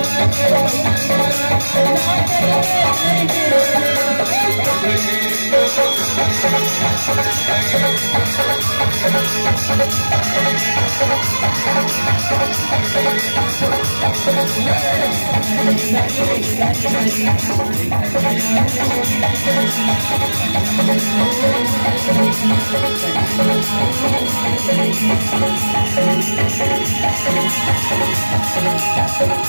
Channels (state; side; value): inverted; both; correlation -1.00